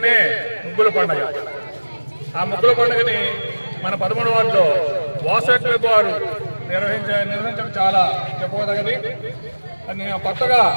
ముగ్గుల పండుగ. ఆ ముగ్గుల పండుగని మన 13వ వార్డులో వాసవి వారు నిర్వహించడం చాలా చెప్పదగది. నేను కొత్తగా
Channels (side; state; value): both; inverted; correlation -1.00